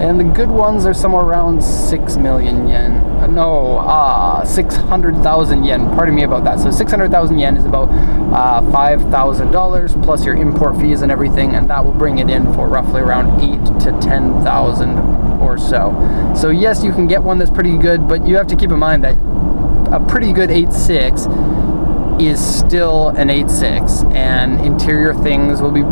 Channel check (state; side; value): inverted; both; correlation -1.00